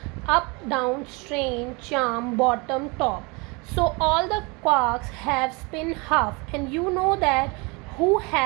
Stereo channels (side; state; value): left; quieter; 28.4 dB